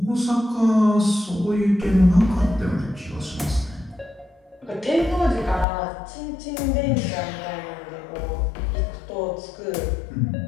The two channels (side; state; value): right; drops out; at 5.7 s